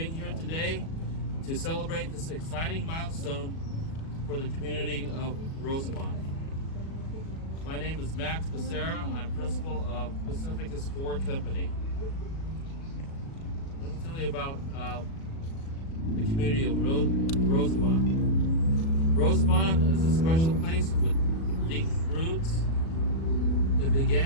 here today to celebrate this exciting milestone for the community of Rosenbaum. My name is Max Becerra. I'm principal of Pacificus Ford Company. Let me tell you about the community of Rosenbaum. Rosenbaum is a special place with deep roots. It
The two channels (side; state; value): right; late; 37 ms